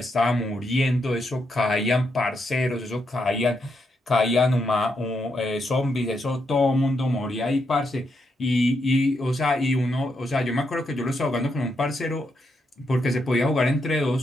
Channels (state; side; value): normal; both; correlation 0.80